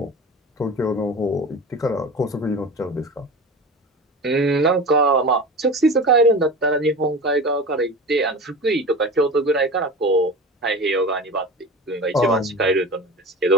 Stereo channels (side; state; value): both; normal; correlation 0.32